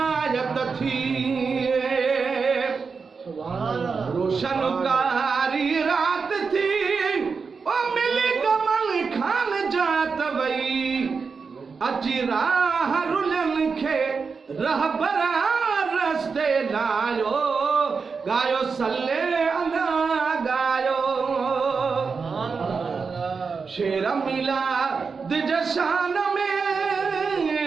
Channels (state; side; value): quieter; left; 5.1 dB